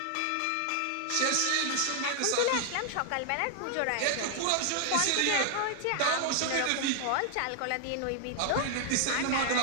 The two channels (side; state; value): both; different; correlation 0.00